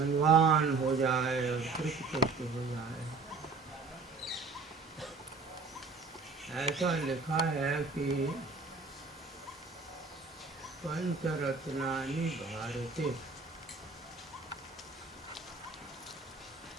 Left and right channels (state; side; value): quieter; left; 4.2 dB